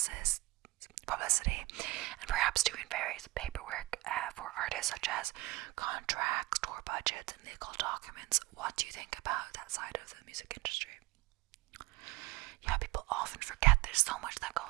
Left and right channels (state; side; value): quieter; left; 21.1 dB